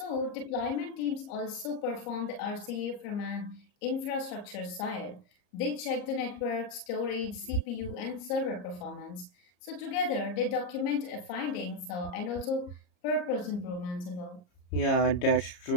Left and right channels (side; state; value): right; late; 34 ms